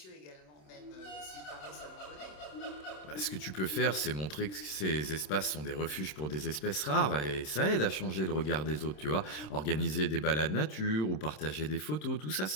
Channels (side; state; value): right; late; 27 ms